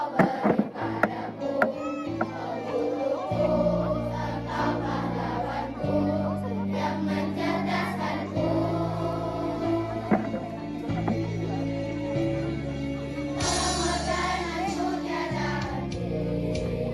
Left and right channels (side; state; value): both; identical; correlation 1.00